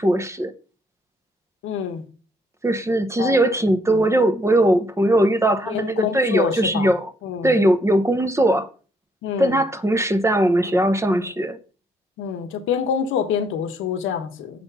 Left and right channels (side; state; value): both; normal; correlation 0.70